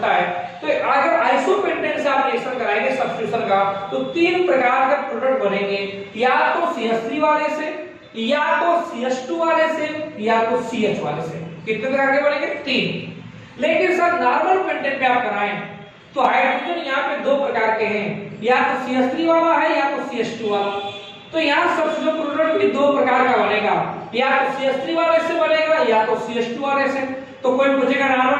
है। तो अगर आइसोपेंटेन से आप रिएक्शन कराएंगे सब्स्टिट्यूशन का, तो तीन प्रकार का प्रोडक्ट बनेंगे, या तो CH3 वाले से, या तो CH2 वाले से, या तो CH वाले से। कितने प्रकार के बनेंगे, तीन। लेकिन सर नॉर्मल पेंटेन पे आप कराएं तो हाइड्रोजन यहाँ पे दो प्रकार के हैं, या तो CH3 वाला है, या तो CH2 वाला। तो यहाँ सब्स्टिट्यूशन प्रोडक्ट भी दो प्रकार का बनेगा, या तो CH3 वाले से बनेगा, या तो CH2 वाले से। तो कोई पूछेगा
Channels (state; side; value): identical; both; correlation 1.00